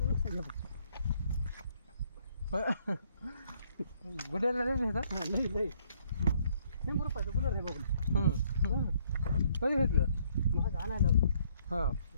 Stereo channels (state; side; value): inverted; both; correlation -0.67